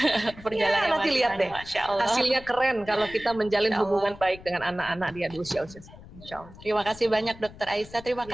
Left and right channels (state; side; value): noise; left; rumble, 19 dB below the sound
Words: Perjalanan nanti lihat deh, hasilnya keren kalau kita menjalin hubungan baik dengan anak-anak dia di usia-usia. Insya Allah. Terima kasih banyak Dokter Aisyah, terima